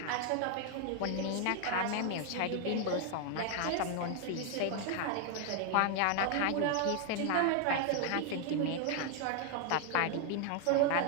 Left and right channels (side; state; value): both; different; correlation 0.00